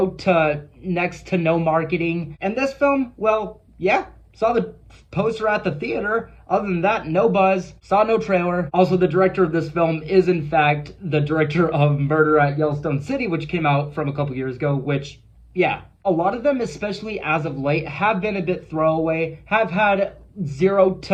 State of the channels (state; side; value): identical; both; correlation 1.00